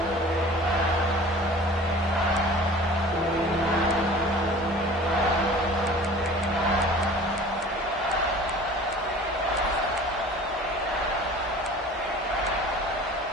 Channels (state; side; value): normal; both; correlation 0.44